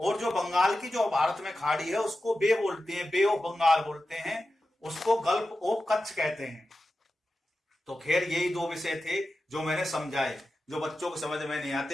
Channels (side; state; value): both; normal; correlation 0.92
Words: जो बंगाल की जो भारत में खाड़ी है उसको बे बोलते हैं, बे ऑफ बंगाल बोलते हैं, उसको गल्फ ऑफ कच्छ कहते हैं। तो खैर यही दो विषय थे जो मैंने समझाए, जो बच्चों को समझ में नहीं